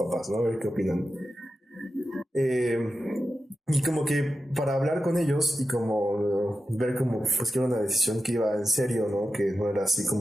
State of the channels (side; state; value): both; normal; correlation 0.91